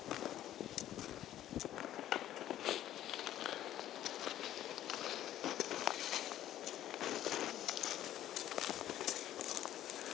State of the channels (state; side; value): quieter; right; 12.5 dB